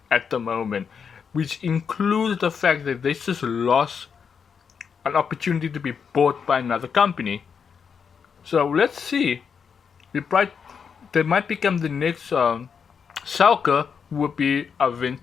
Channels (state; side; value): quieter; right; 6.5 dB